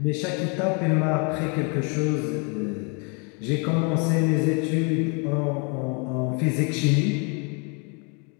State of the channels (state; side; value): quieter; right; 34.6 dB